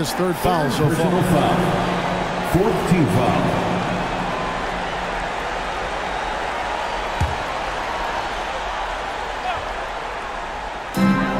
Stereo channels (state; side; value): identical; both; correlation 1.00